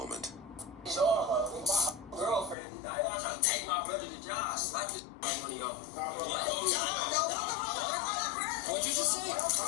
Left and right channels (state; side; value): drops out; right; at 2.6 s